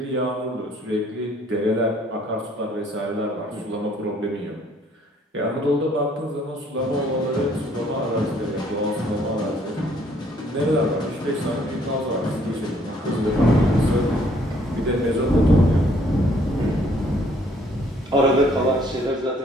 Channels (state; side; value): normal; both; correlation 0.63